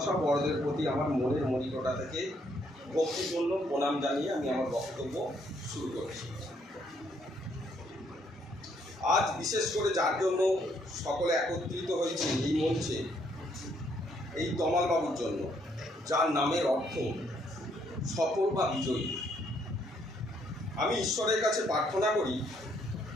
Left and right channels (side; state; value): both; normal; correlation 0.70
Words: বড়দের প্রতি আমার মনের মনিকটা থেকে ভক্তিপূর্ণ প্রণাম জানিয়ে আমি আমার বক্তব্য শুরু করেছি। আজ বিশেষ করে যার জন্য সকলে একত্রিত হয়েছে এই মঞ্চে, এই তমাল বাবুর জন্য, যার নামের অর্থ সফল বা বিজয়ী। আমি ঈশ্বরের কাছে প্রার্থনা করি